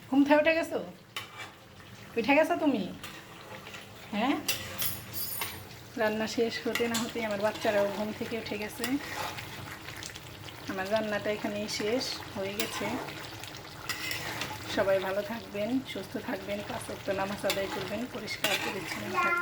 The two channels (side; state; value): both; identical; correlation 1.00